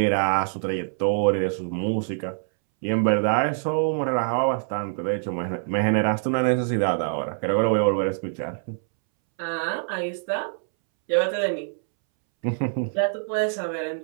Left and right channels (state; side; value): silent; left; 62 dB below the other